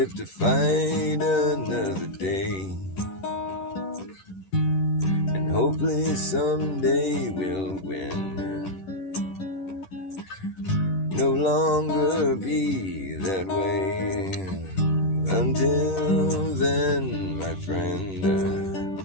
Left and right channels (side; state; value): right; late; 10 ms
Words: to fight another day. And hopefully someday we'll win. No longer be that way. Until then, my friend,